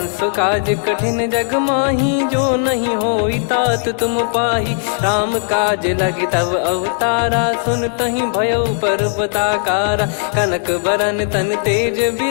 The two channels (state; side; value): silent; right; digital silence